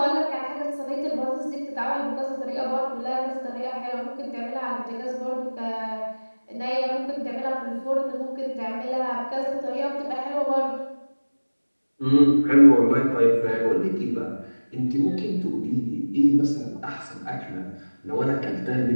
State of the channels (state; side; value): inverted; both; correlation -1.00